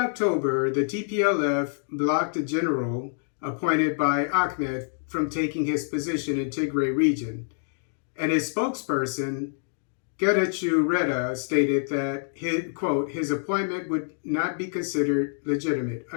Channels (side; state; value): right; silent; digital silence